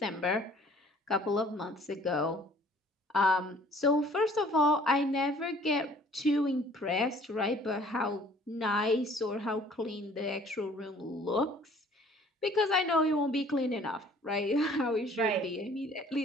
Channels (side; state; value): both; normal; correlation 0.54